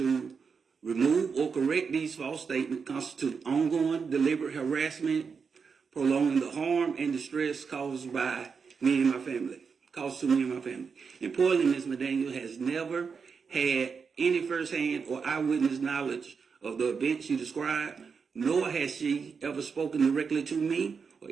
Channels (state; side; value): quieter; left; 5.7 dB